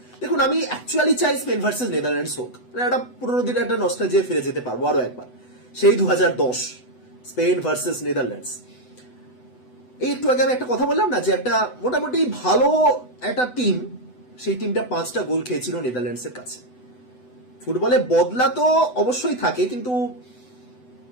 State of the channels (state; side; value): late; right; 8.0 ms